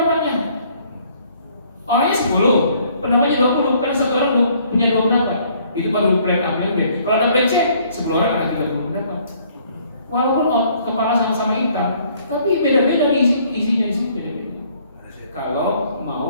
Orangnya 10, pendapatnya 20, karena satu orang punya 2 pendapat. Itu baru plan A, plan B. Kalau ada plan C, 10 orang ada 30 pendapat. Walaupun kepala sama-sama hitam, tapi beda-beda isinya di sini beda-beda. Kalau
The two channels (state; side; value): inverted; both; correlation -0.62